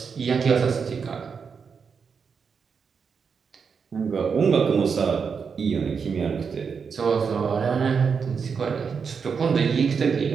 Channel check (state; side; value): quieter; left; 6.0 dB